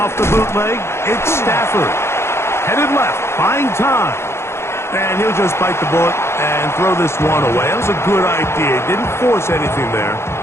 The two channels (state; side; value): late; right; 0.13 ms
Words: the bootleg, it's Stafford. Headed left, buying time. And he'll just bite the bullet and throw this one away. That was a good idea. Didn't force anything there.